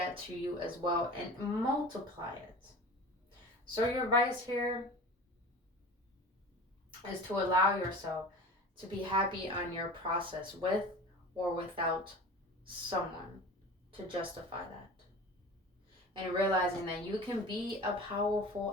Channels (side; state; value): both; normal; correlation 0.37